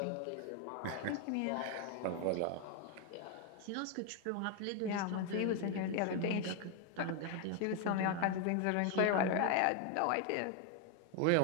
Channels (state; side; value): different; both; correlation 0.01